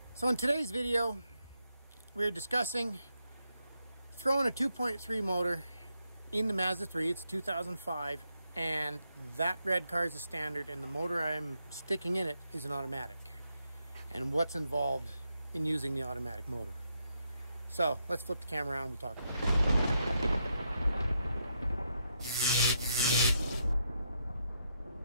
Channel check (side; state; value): both; inverted; correlation -0.80